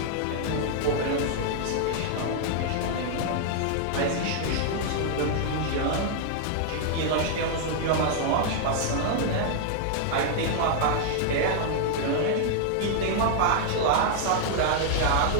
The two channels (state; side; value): different; both; correlation -0.01